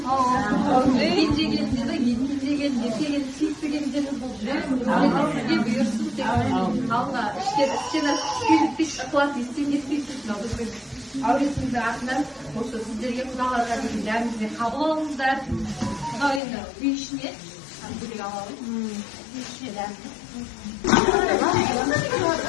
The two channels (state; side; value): drops out; right; at 16.4 s